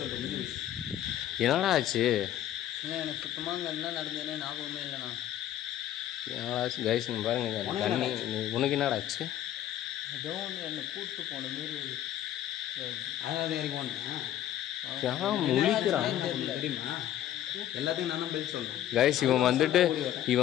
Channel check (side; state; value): right; quieter; 12.0 dB